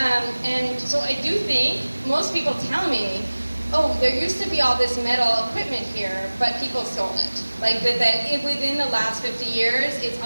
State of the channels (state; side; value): inverted; both; correlation -1.00